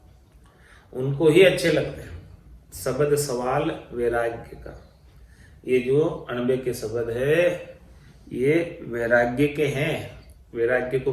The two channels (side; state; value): both; identical; correlation 1.00